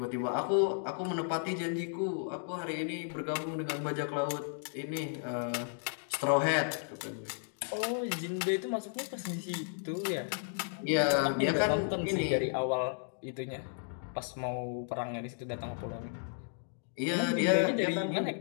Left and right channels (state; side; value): silent; right; digital silence